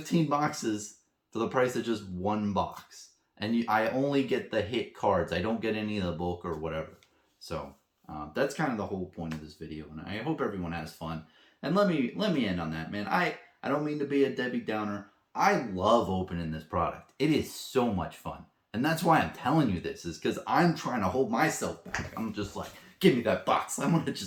boxes for the price of just 1 box. And I only get the hit cards. I don't get any of the bulk or whatever. So that's kind of the whole point of this video. And I hope everyone has fun. And let me end on that, man. I don't mean to be a Debbie Downer. I love opening this product. It is so much fun. And that's why I'm telling you this, is because I'm trying to hold myself back. I'm just like, give me that box. I want to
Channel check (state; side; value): identical; both; correlation 1.00